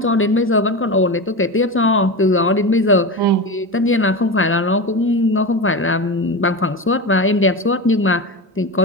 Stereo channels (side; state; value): both; normal; correlation 0.23